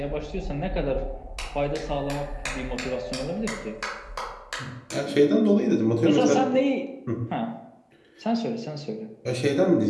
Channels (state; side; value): identical; both; correlation 1.00